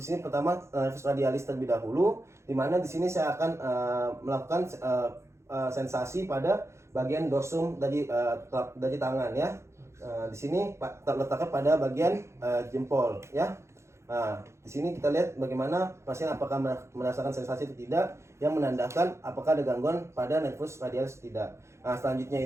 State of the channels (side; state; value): left; late; 0.13 ms